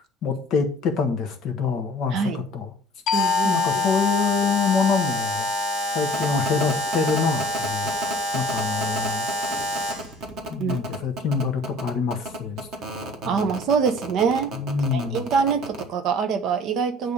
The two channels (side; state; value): both; normal; correlation 0.49